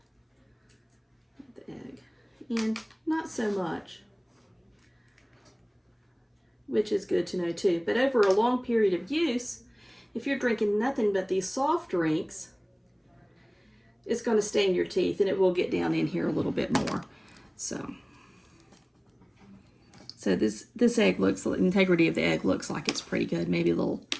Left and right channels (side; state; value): both; identical; correlation 1.00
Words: of the egg. And not so much, which is good to know too. But over a long period of use, if you're drinking nothing but these soft drinks, it's going to stain your teeth, and it will get down in here a little bit more. So this egg looks, the integrity of the egg looks like it's pretty good. Maybe a little